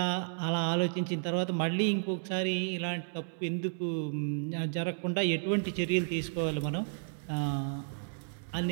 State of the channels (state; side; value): silent; left; 56 dB below the other